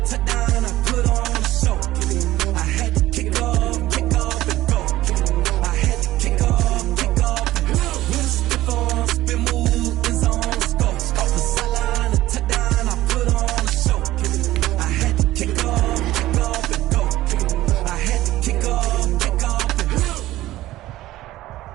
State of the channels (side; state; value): left; quieter; 15.9 dB